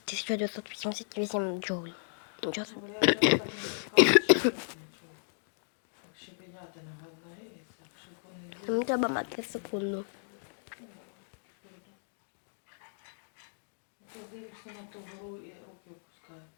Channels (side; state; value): right; silent; digital silence